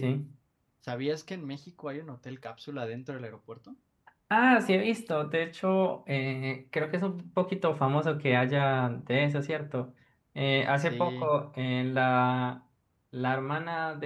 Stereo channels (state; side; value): identical; both; correlation 1.00